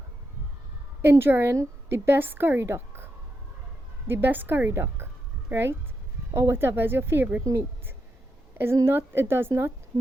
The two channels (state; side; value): normal; both; correlation 0.84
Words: enjoying the best curry duck, right? Or whatever is your favorite meat. It does not